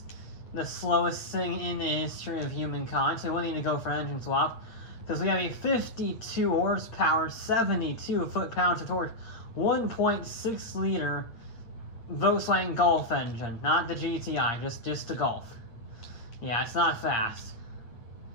the slowest thing in the history of humankind, so we won't need to go for an engine swap, because we have a 52 horsepower, 72 foot-pounds of torque, 1.6 liter Volkswagen Golf engine, not the GTI, just the Golf. Yeah, it's not fast.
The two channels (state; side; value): late; right; 8.8 ms